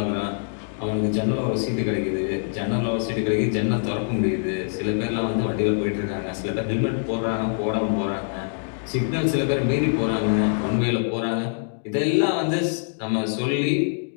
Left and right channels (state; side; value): silent; right; digital silence